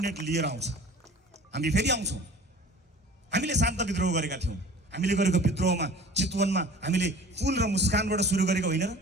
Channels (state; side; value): normal; both; correlation 0.44